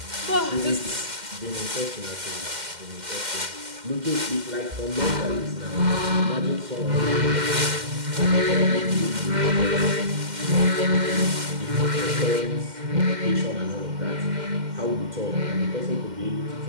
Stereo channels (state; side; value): late; left; 2.1 ms